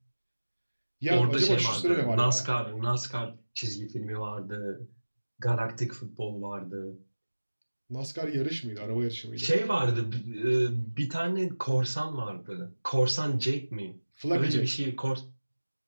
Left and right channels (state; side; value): inverted; both; correlation -1.00